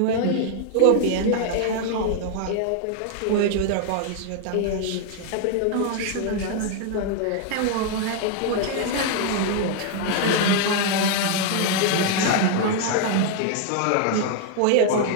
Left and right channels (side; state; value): both; different; correlation 0.00